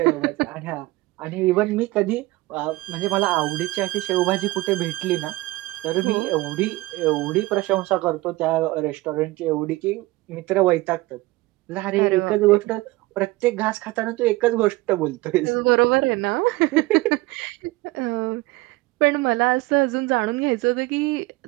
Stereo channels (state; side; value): quieter; left; 20.1 dB